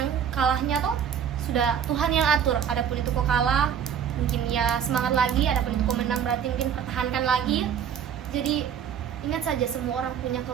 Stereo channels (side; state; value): left; quieter; 8.3 dB